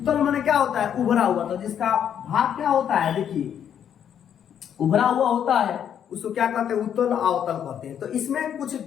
मने क्या होता है, उभरा हुआ। तो जिसका भाग क्या होता है, देखिए उभरा हुआ होता है, उसको क्या कहते हैं, उत्तल अवतल कहते हैं। तो इसमें कुछ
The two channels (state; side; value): quieter; right; 9.0 dB